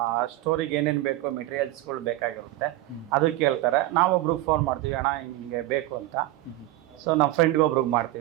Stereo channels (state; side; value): quieter; left; 16.4 dB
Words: ಸ್ಟೋರಿಗೆ ಏನೇನು ಬೇಕು ಮೆಟೀರಿಯಲ್ಸ್ಗಳು ಬೇಕಾಗಿರುತ್ತೆ, ಅದು ಕೇಳ್ತಾರೆ. ನಾವೊಬ್ರಿಗೆ ಫೋನ್ ಮಾಡ್ತೀವಿ, ಅಣ್ಣ ಹಿಂಗೆ ಬೇಕು ಅಂತ. ಸೊ ನಮ್ಮ ಫ್ರೆಂಡ್ಗೆ ಒಬ್ರಿಗೆ